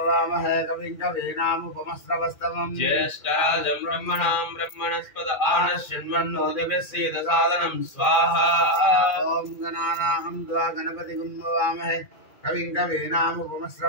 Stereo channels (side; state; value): right; late; 2.5 ms